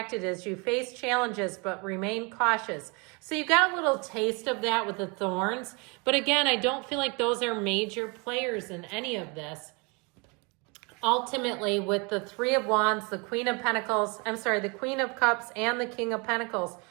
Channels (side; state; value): left; quieter; 30.3 dB